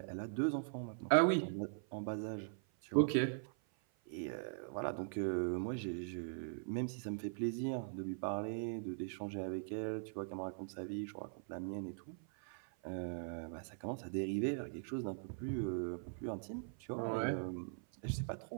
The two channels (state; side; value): silent; left; 50 dB below the other